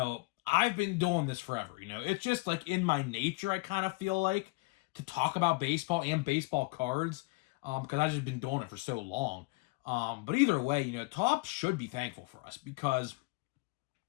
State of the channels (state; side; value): quieter; right; 25.7 dB